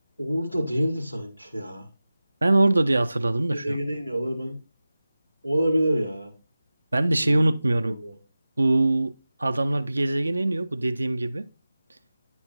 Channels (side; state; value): both; inverted; correlation -0.96